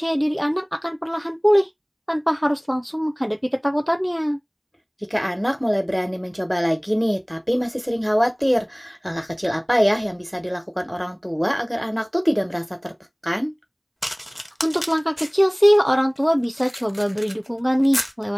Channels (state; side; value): identical; both; correlation 1.00